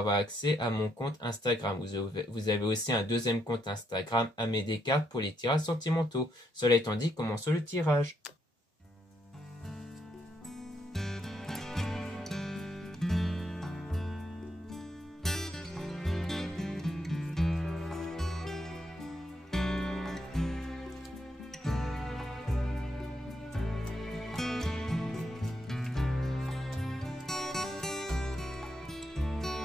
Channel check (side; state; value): both; normal; correlation 0.77